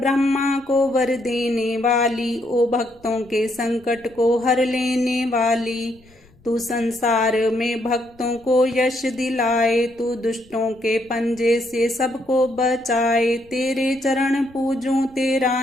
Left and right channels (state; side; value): noise; left; rumble, 29 dB below the sound